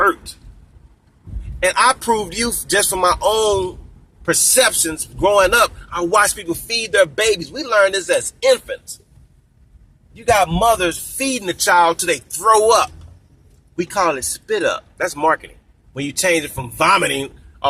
And I proved you just from my own perceptions growing up. I watched people feed their babies. We learned this as infants. You got mothers feeding the child till they throw up. We call it spit up. That's marketing. When you change it from vomiting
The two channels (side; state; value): both; identical; correlation 1.00